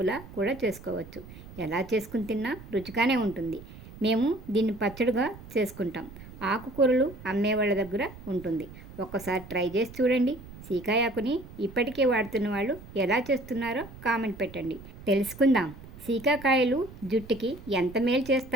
కూడా చేసుకోవచ్చు. ఎలా చేసుకుని తిన్నా రుచిగానే ఉంటుంది. మేము దీన్ని పచ్చడిగా చేసుకుంటాం. ఆకుకూరలు అమ్మేవాళ్ళ దగ్గర ఉంటుంది. ఒక్కసారి ట్రై చేసి చూడండి. సీకాయాకుని ఇప్పటికే వాడుతున్న వాళ్ళు ఎలా చేస్తున్నారో కామెంట్ పెట్టండి, తెలుసుకుందాం. సీకాకాయలు జుట్టుకి ఎంత మేలు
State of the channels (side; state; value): right; noise; rumble, 16 dB below the sound